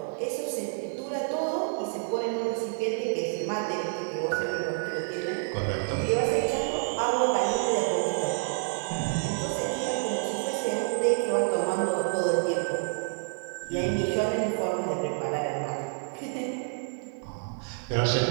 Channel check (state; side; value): silent; left; digital silence